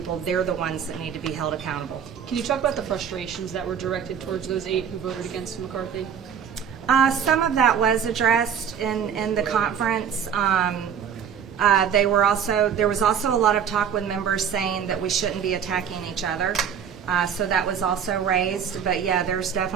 they're the ones that need to be held accountable. Can you talk about the frustrations that were directed towards those 8 who voted against McCarthy? Some of that was addressed in the conference. There was also a lot of talk with members saying that we shouldn't be attacking each other. So that was also raised. But yeah, there's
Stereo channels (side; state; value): left; quieter; 8.0 dB